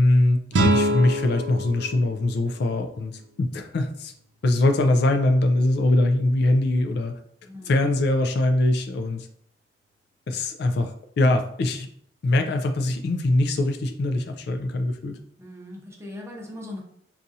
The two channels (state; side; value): normal; both; correlation 0.80